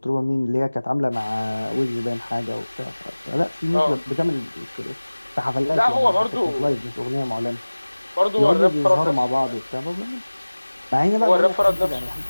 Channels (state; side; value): inverted; both; correlation -1.00